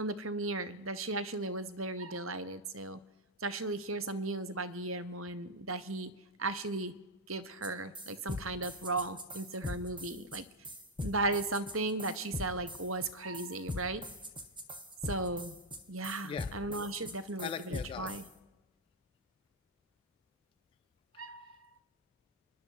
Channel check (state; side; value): normal; both; correlation 0.00